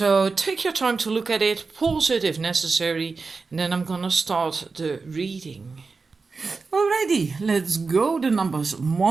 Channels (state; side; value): quieter; left; 4.3 dB